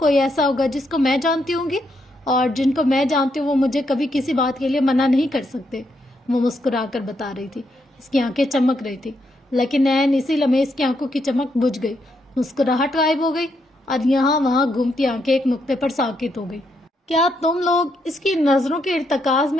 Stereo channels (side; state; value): both; normal; correlation 0.78